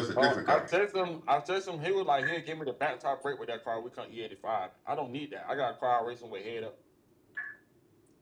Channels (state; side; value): identical; both; correlation 1.00